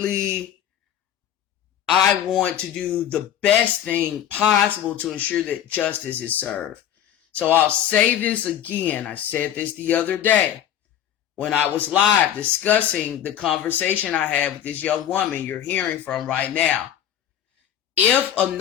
I want to do the best thing possible to ensure that justice is served. So I'll say this again. I said this the other day when I was live discussing the conversation I had with this young woman you're hearing from right now. If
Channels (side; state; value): right; quieter; 10.5 dB